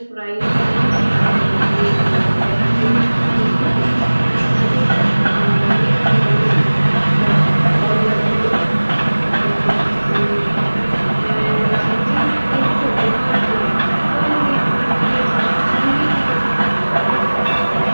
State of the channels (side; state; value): both; inverted; correlation -1.00